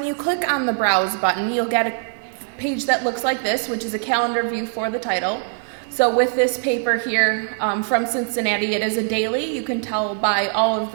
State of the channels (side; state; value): left; silent; 58 dB below the other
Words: you click on the browse button, you'll get a page that looks like this, which is a calendar view for the title. So with this paper here from Cincinnati, it is a daily. You can tell by all of